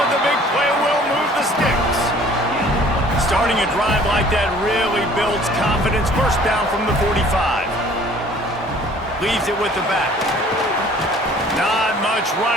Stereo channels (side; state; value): both; normal; correlation 0.53